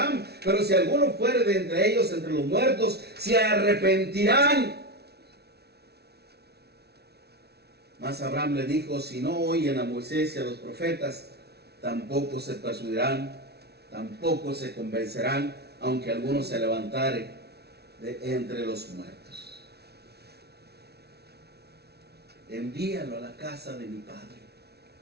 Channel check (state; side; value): late; left; 0.48 ms